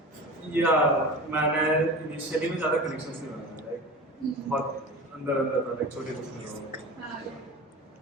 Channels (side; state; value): both; normal; correlation 0.32